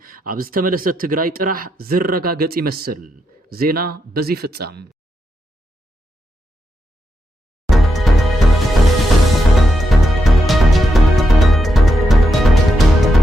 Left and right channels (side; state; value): both; normal; correlation 0.84